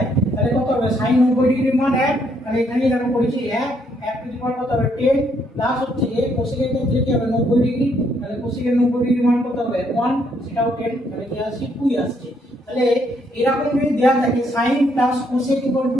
তাহলে কত হবে সাইন 90 ডিগ্রির মান 1, তাহলে এখানে দেখো করেছি 1 টু দি পাওয়ার কত হবে 10 প্লাস হচ্ছে যে কোসেকের ক্ষেত্রে কি হবে 90 ডিগ্রি, তাহলে কোসেকের 90 ডিগ্রি মান কত হবে 1, সেটাও 10, তাহলে কি আসছে 2 আসছে। তাহলে এরকম যদি দেওয়া থাকে sin plus cosec equal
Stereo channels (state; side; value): normal; both; correlation 0.71